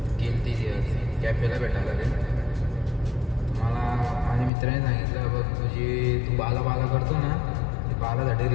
गेली ती कॅफेला भेटायला रे. मला माझ्या मित्राने सांगितलं बघ तू बाला करतो ना ते बालासाठी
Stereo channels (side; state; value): right; drops out; at 4.5 s